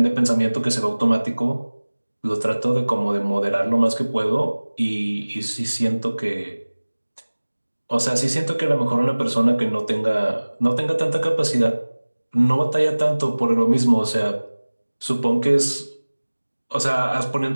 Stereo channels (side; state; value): both; inverted; correlation -1.00